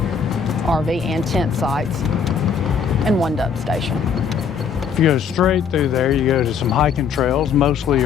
RV and tent sites and 1 dump station. If you go straight through there, you go to some hiking trails. Mostly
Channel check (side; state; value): right; quieter; 6.5 dB